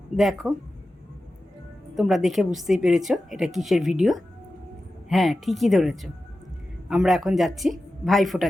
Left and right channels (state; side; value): normal; both; correlation 0.93